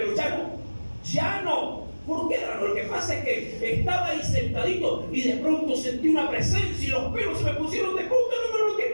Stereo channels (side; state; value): both; inverted; correlation -1.00